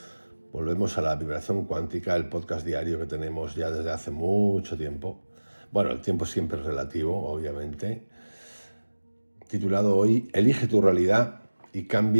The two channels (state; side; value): inverted; both; correlation -1.00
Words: Volvemos a la vibración cuántica, el podcast diario que tenemos ya desde hace mucho tiempo. Bueno, el tiempo siempre es relativo, obviamente. Titulado hoy, Elige tu realidad y